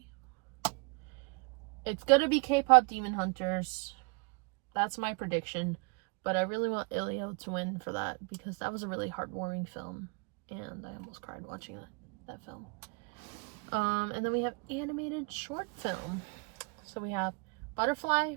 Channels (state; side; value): quieter; left; 32.5 dB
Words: It's gonna be K-pop Demon Hunters. That's my prediction. But I really want Ilio to win for that because that was a really heartwarming film. And I almost cried watching that film. And then we have animated short film. So we have Butterfly,